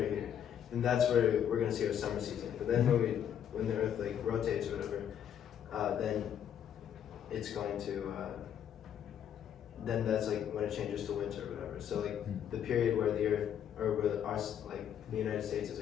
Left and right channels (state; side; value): quieter; right; 9.3 dB